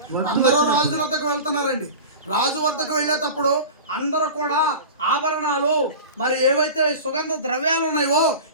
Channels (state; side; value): inverted; both; correlation -0.33